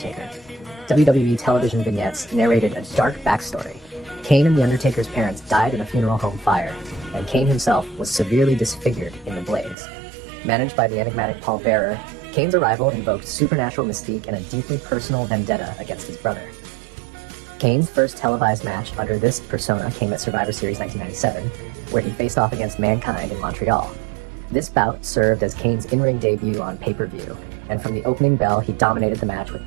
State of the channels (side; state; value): left; drops out; at 9.8 s